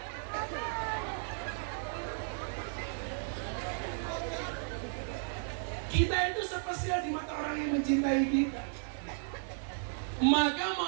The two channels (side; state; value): left; silent; digital silence